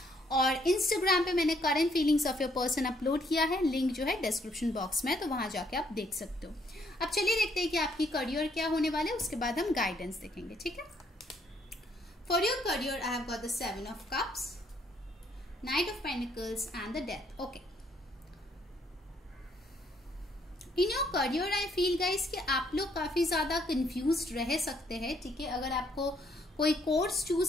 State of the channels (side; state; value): both; normal; correlation 0.69